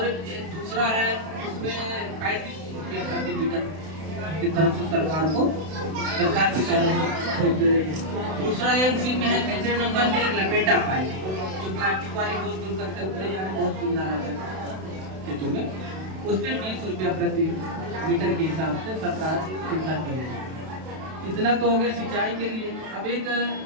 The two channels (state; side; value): late; left; 32 ms